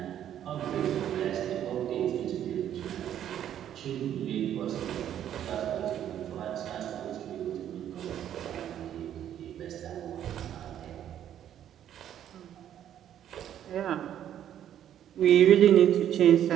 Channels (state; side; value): quieter; left; 10.5 dB